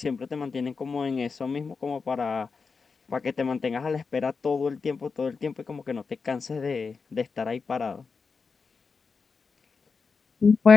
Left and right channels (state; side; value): quieter; right; 5.0 dB